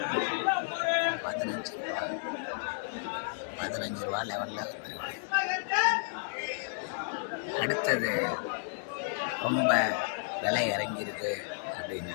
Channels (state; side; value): silent; right; digital silence